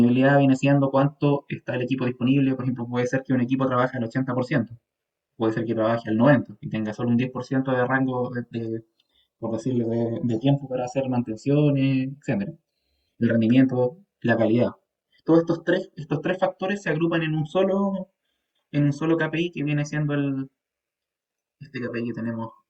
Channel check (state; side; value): identical; both; correlation 1.00